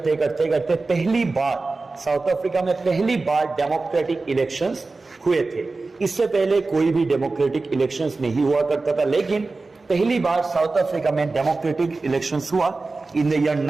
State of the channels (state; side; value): quieter; left; 3.6 dB